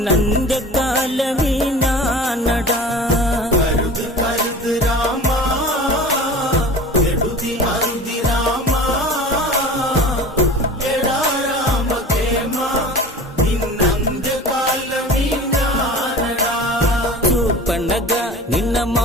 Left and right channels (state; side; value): normal; both; correlation 0.38